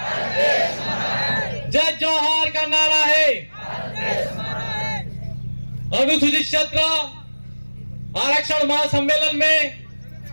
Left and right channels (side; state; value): both; inverted; correlation -1.00